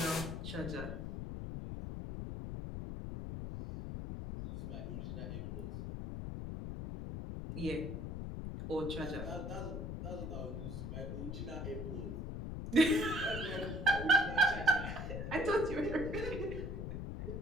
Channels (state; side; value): noise; left; rumble, 5 dB below the sound